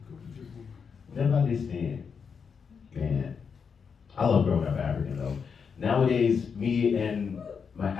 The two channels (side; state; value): right; quieter; 6.2 dB